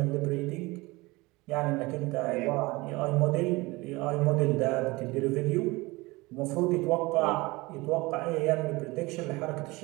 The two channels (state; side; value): quieter; left; 22.6 dB